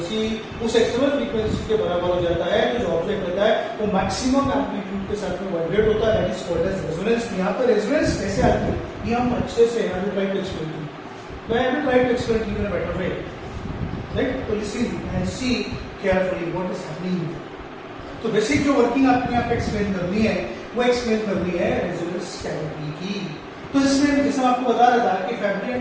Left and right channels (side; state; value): both; identical; correlation 1.00